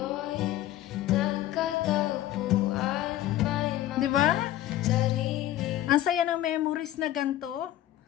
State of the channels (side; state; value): right; quieter; 13.8 dB